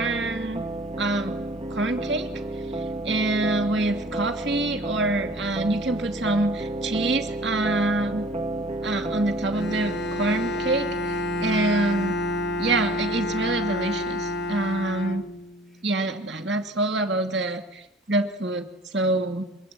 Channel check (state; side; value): normal; both; correlation 0.49